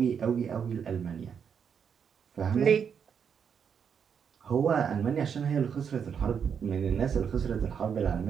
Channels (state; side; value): quieter; left; 7.2 dB